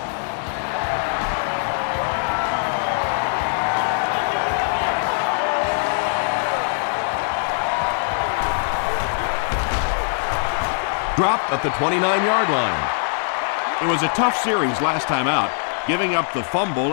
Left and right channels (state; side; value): silent; right; digital silence